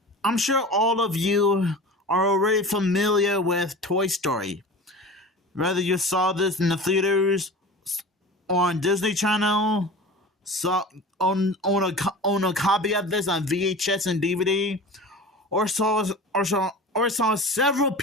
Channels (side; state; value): both; normal; correlation 0.35